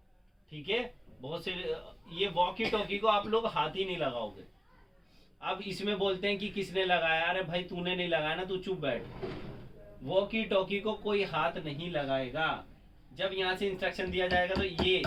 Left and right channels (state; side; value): identical; both; correlation 1.00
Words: ठीक है। बहुत से ये वॉकी टॉकी को आप लोग हाथ ही नहीं लगाओगे। अब इसमें बोलते हैं कि किसने लगाया, अरे भाई तूने नहीं लगाया ना, तू चुप बैठ। वॉकी टॉकी को कोई हाथ नहीं लगाएगा। जब यहाँ से इंस्ट्रक्शन दिया जाएगा तो ये,